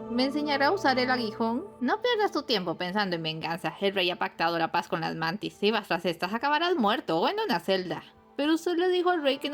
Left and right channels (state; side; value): identical; both; correlation 1.00